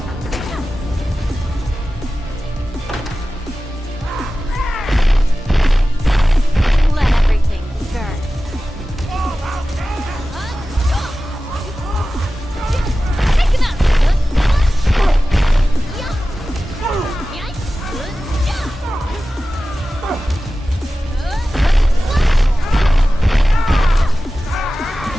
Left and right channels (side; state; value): both; normal; correlation 0.95